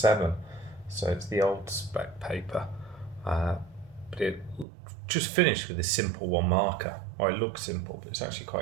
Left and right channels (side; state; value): left; drops out; at 4.7 s